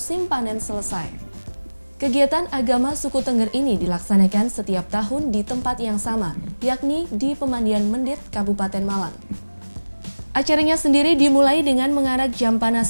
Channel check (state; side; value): inverted; both; correlation -1.00